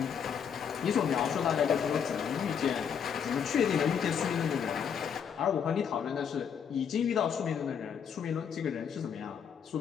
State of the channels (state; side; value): quieter; right; 7.6 dB